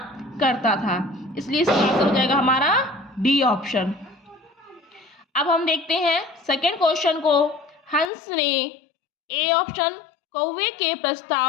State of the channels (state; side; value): drops out; right; at 8.1 s